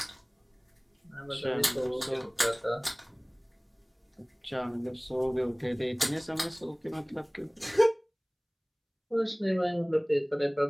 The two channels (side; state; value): both; identical; correlation 1.00